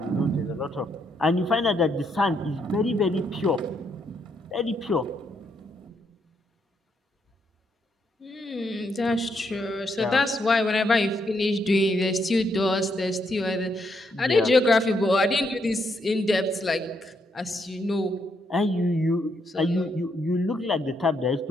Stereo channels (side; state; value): both; normal; correlation 0.76